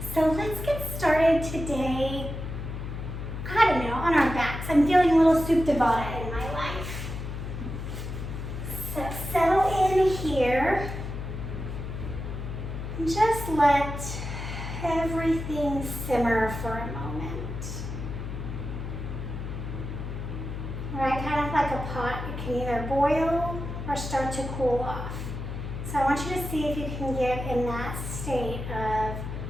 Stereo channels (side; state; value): left; noise; hum, 6 dB below the sound